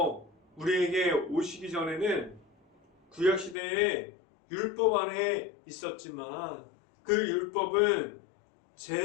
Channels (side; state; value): right; drops out; at 3.6 s